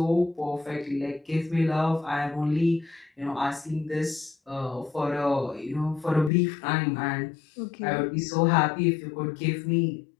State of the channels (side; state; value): right; drops out; at 6.3 s